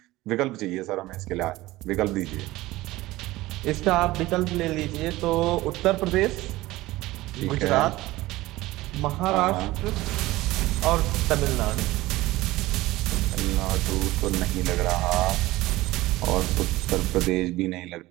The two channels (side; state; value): left; quieter; 18.2 dB